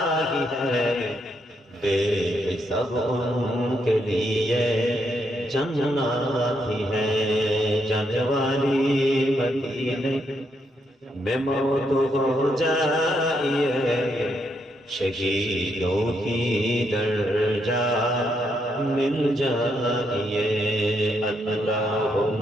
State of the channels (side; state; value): both; normal; correlation 0.77